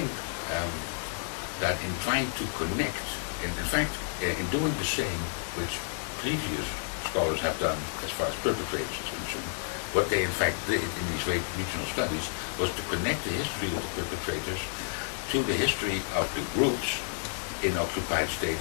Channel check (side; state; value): right; silent; digital silence